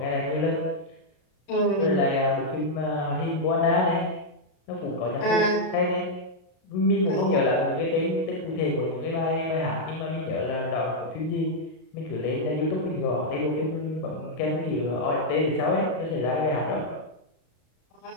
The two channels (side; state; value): right; late; 33 ms